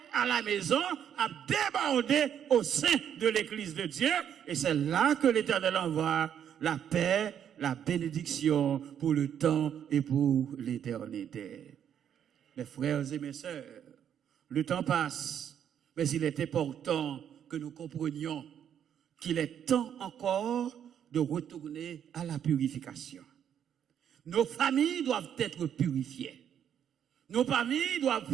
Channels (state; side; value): quieter; left; 9.1 dB